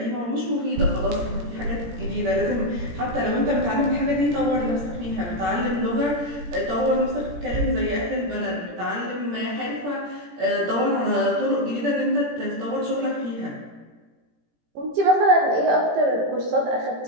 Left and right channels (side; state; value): left; late; 17 ms